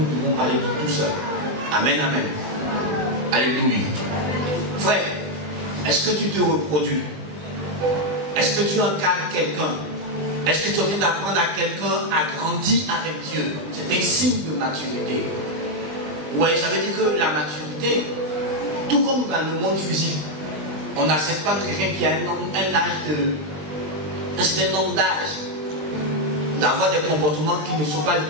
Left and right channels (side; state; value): left; late; 20 ms